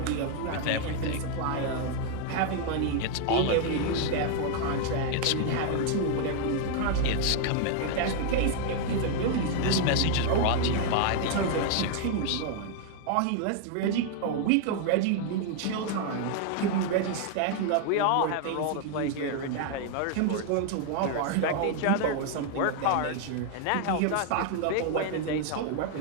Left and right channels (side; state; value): both; different; correlation 0.00